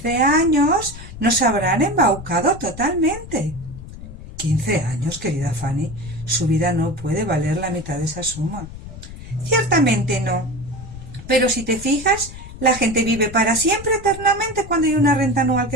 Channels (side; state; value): left; noise; rumble, 14 dB below the sound